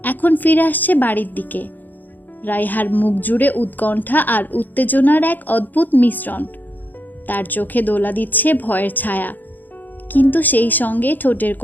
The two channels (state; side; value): late; right; 0.086 ms